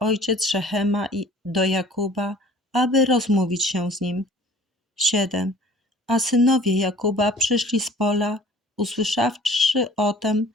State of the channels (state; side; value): normal; both; correlation 0.50